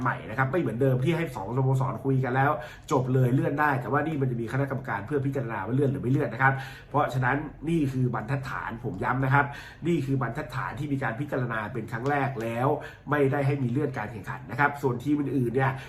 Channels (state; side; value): identical; both; correlation 1.00